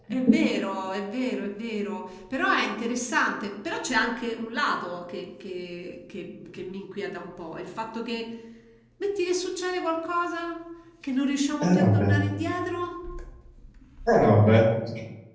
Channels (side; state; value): both; identical; correlation 1.00